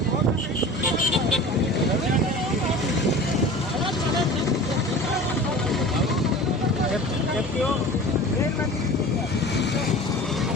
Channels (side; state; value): both; normal; correlation 0.38